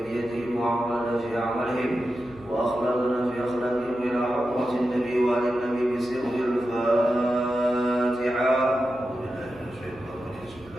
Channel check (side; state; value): right; noise; hum, 22 dB below the sound